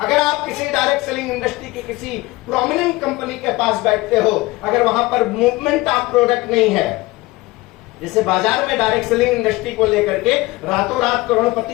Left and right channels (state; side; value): quieter; right; 20.8 dB